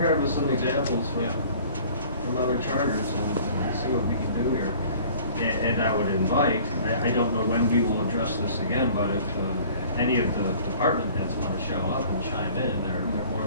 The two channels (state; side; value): inverted; both; correlation -0.50